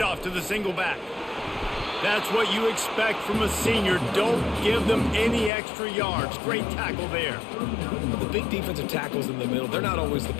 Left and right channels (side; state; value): right; drops out; at 5.5 s